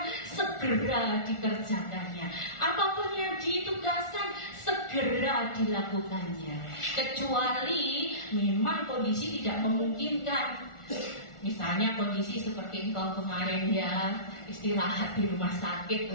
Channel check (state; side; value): late; right; 1.4 ms